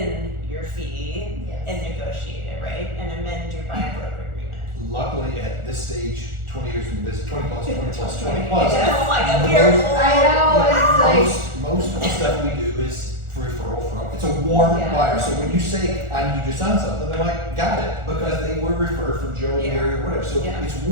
your fee and negotiate it, right? And amend your buyer broker agreement. Luckily, at this stage, 20 years into this, 20 plus, 20 plus, 20 plus. Yeah, oh my God, we are old. I know, it's like, Most of the stuff we do is for referral from, it's a warm buyer. So when you say, I need you to sign something, they're like, got it, because they were referred from Joe, Mary, or whatever. So it's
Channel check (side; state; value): left; late; 1.4 ms